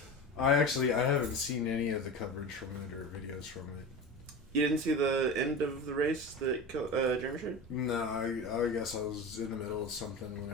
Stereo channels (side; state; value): both; normal; correlation 0.28